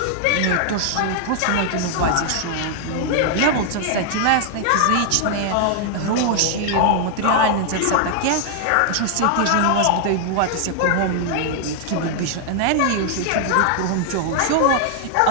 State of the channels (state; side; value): different; both; correlation 0.00